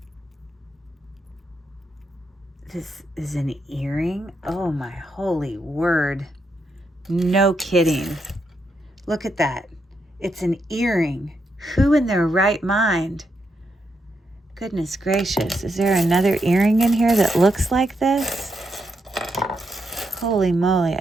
This is an earring. Oh my holy word. No kidding. Look at that. It's an earring. Who in their right mind? Goodness gracious. Is there another earring in here that looks like this? Holy moly.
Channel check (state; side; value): normal; both; correlation 0.81